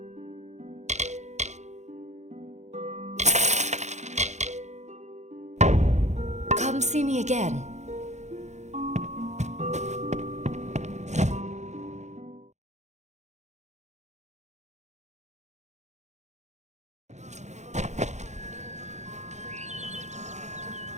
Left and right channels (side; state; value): left; late; 0.33 ms